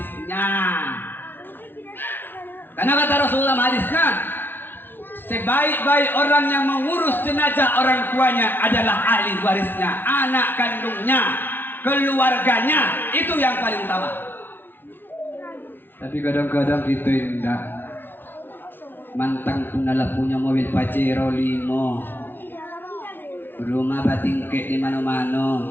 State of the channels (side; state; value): right; late; 0.098 ms